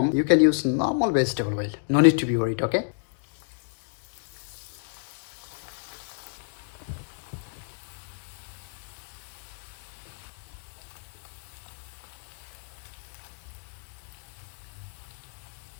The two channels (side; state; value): right; silent; digital silence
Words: you can use normal vegetable oil. No need to be worried, okay?